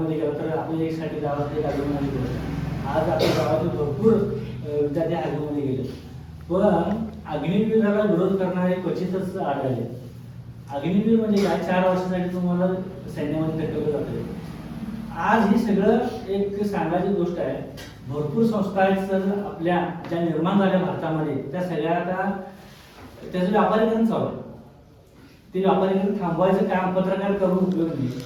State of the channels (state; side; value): identical; both; correlation 1.00